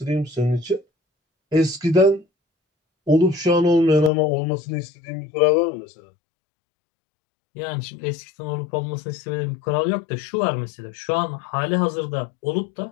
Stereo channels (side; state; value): right; drops out; at 4.1 s